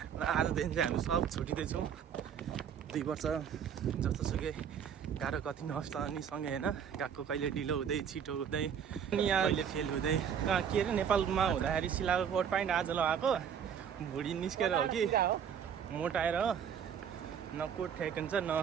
र आजदेखि चाहिँ हामी सब छुटिँदैछौँ। 2 वर्ष जस्तोसुकै गाह्रो कति नहोस् त अनि सँगै होइन गएको, कहिले ढिलो हुँदै छिटो हुँदै अनि यहाँ कहिले फेल हुँदै कहाँ के अरे नेपालमा हुँदाखेरि सिलाएको कोट प्यान्ट आज लगाएको भुँडी निस्केर हो कि मोटाएर हो, न कोट ठिक हुन्छ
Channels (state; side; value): quieter; left; 8.0 dB